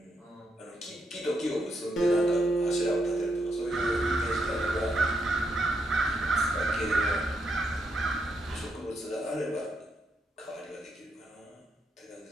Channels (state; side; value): normal; both; correlation 0.80